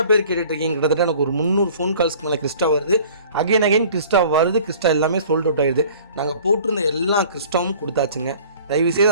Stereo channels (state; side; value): inverted; both; correlation -0.49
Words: பேர் கேட்டுட்ருக்கீங்க. கிட்டத்தட்ட எனக்கு ஒரு 300 ஃபோன் கால்ஸ்க்கு மேலே கிறிஸ்டா வருது. அகைன் கிறிஸ்டா வருது. கிறிஸ்டா எல்லாமே சோல்ட் அவுட் ஆகிடுது. நாங்கள் போட்டிருந்த எல்லா கிறிஸ்டாவும் கொடுத்தாச்சுங்க. தயவுசெய்து